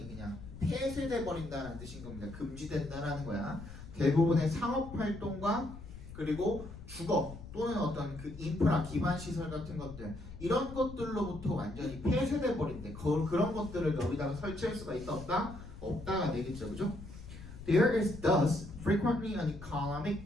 그냥 폐쇄돼 버린다는 뜻인 겁니다. 금지된다라는 거야. 대부분의 상업 활동과 그리고 주거 또는 어떤 그 인프라 기반 시설 같은 것들 이런 것들로부터 완전히 폐쇄돼 버린대. 그런 것들을 여기다가 설치할 수가 있다 없다? 없다가 되겠죠, 그죠? There is thus frequently an economic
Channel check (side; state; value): left; noise; rumble, 14 dB below the sound